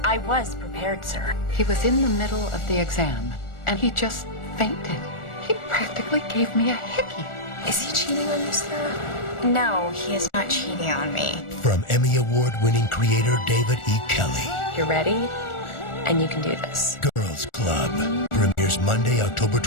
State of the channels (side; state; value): right; late; 1.4 ms